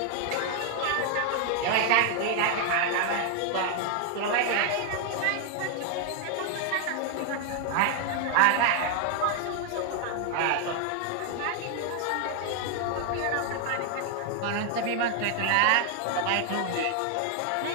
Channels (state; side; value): different; both; correlation 0.00